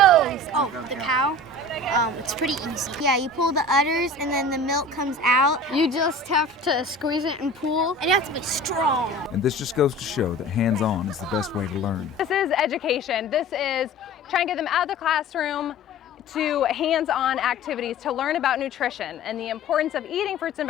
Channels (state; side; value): normal; both; correlation 0.40